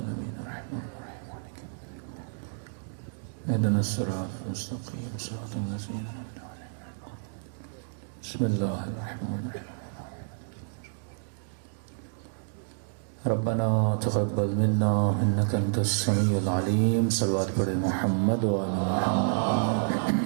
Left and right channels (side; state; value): left; silent; digital silence